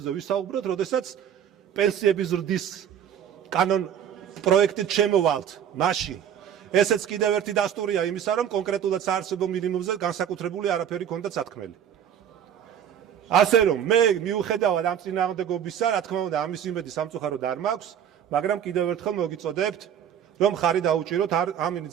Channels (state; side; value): quieter; left; 9.1 dB